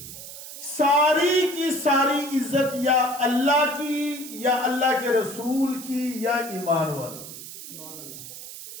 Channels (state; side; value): noise; right; hiss, 12 dB below the sound